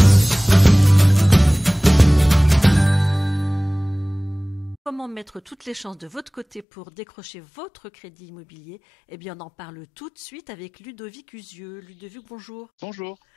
Comment mettre toutes les chances de votre côté pour décrocher votre crédit immobilier? Eh bien, on en parle tout de suite avec Ludovic Usieux. Ludovic, bonjour. Bonjour.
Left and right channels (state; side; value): drops out; right; at 6.7 s